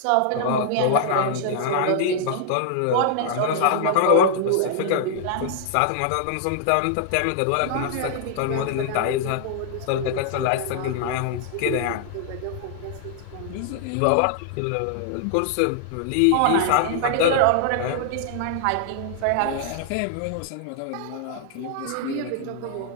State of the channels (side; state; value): both; different; correlation -0.01